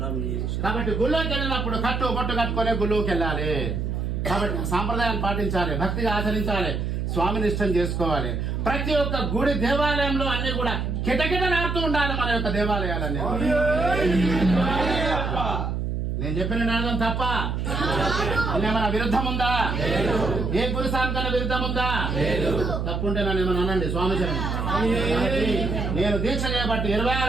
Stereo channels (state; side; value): noise; right; hum, 1 dB below the sound